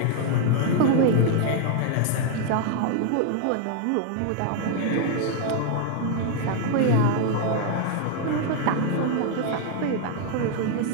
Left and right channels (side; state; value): both; different; correlation 0.00